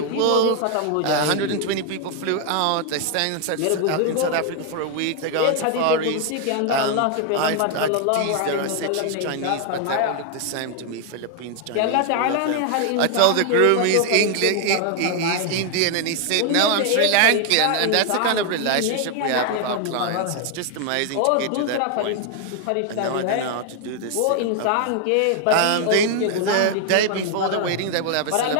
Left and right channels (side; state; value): both; different; correlation 0.00